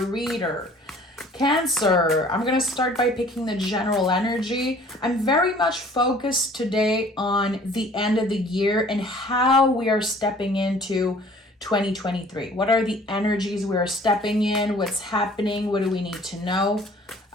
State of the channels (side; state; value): both; normal; correlation 0.52